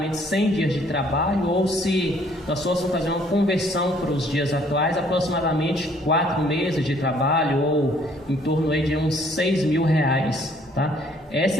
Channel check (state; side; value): normal; both; correlation 0.62